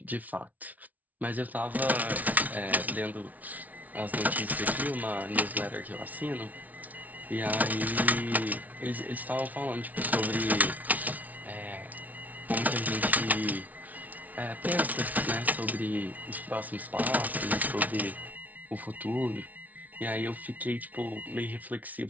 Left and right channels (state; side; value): late; left; 0.074 ms